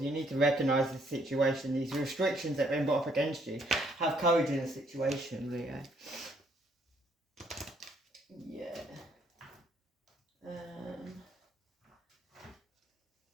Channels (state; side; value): normal; both; correlation 0.68